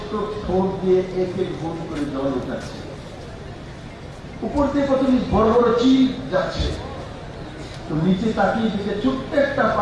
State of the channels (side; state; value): both; identical; correlation 1.00